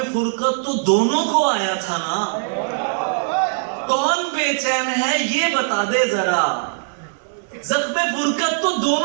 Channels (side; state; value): left; silent; 58 dB below the other